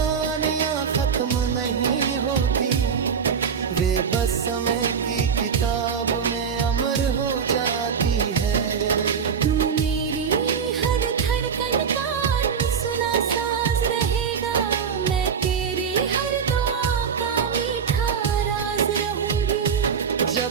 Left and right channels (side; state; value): left; quieter; 6.7 dB